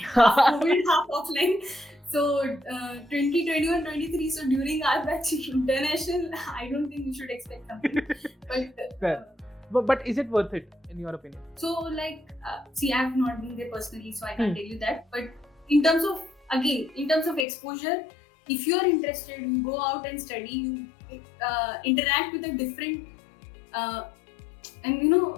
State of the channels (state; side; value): drops out; right; at 17.4 s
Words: Half COVID, half offline. So 2021-23. So during our batch, international, I don't think you should expect something. But is it worth it in your opinion? So like, see, I have not been there personally, so I can't tell you that. But in terms of exposure, if you are interested, you go out and study, you interact with a different, and in